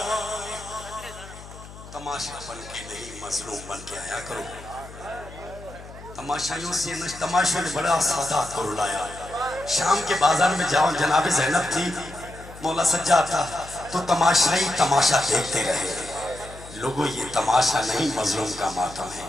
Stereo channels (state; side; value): noise; left; hum, 16 dB below the sound